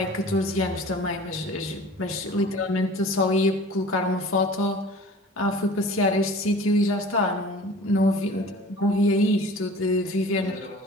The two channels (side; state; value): both; normal; correlation 0.43